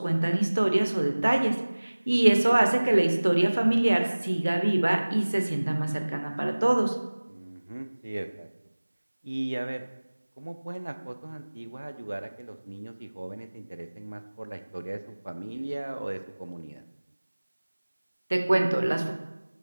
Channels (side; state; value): both; inverted; correlation -1.00